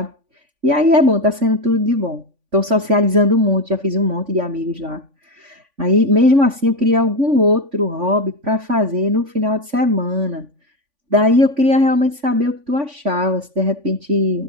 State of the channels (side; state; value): left; late; 3.5 ms